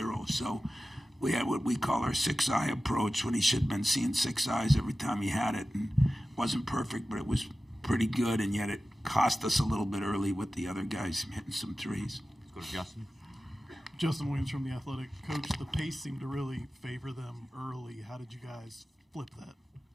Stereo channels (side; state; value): both; normal; correlation 0.95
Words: So we had what we call our 6-eye approach when he should have been seeing 6 eyes every time he had it. And it wasn't perfect, but it was pretty good, and yet it cost us a little bit early with the other guys hitting some threes. Let's go to Justin. Justin Williams from The Athletic. Coach, the pace seemed to really favor them early. How did you guys flip